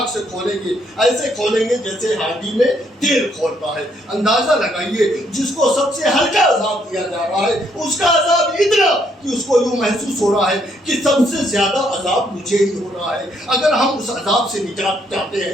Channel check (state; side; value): normal; both; correlation 0.71